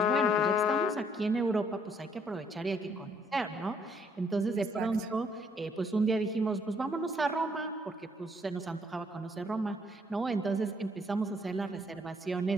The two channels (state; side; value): normal; both; correlation 0.67